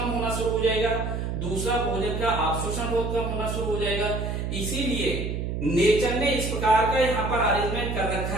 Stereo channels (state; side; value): noise; right; hum, 3 dB below the sound